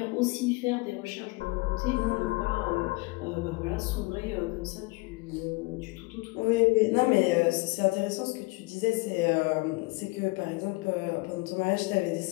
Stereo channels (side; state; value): right; quieter; 25.1 dB